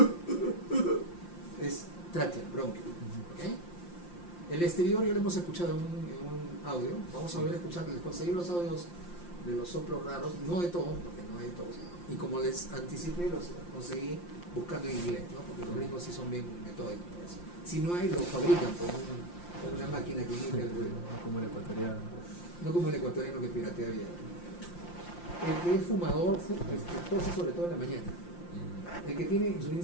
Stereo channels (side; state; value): right; late; 5.7 ms